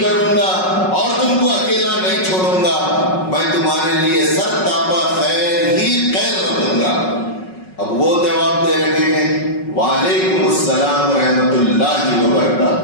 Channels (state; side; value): late; right; 5.4 ms